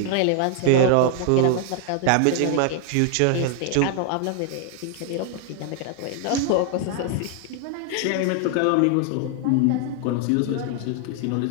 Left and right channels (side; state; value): both; different; correlation 0.00